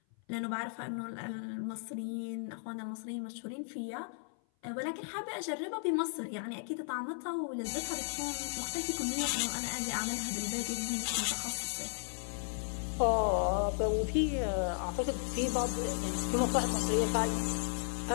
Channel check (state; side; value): silent; right; 54 dB below the other